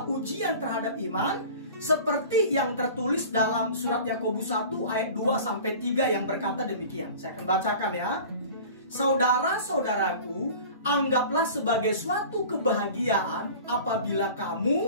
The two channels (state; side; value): inverted; both; correlation -0.41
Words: ujian terhadap iman, seperti yang tertulis dalam surat Yakobus 1 ayat 2 sampai 3 yang berkata demikian. Saya akan bacakan ya. Saudara-saudaraku, anggaplah sebagai suatu kebahagiaan apabila